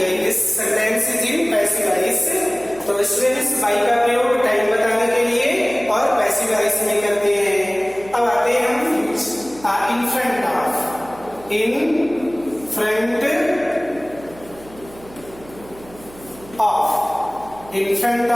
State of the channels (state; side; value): noise; right; hum, 21 dB below the sound